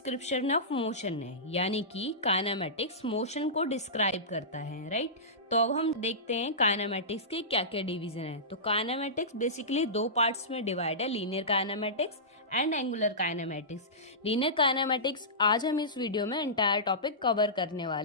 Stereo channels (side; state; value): both; normal; correlation -0.19